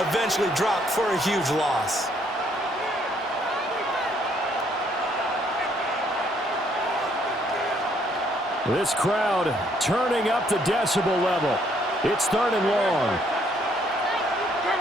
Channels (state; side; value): normal; both; correlation 0.68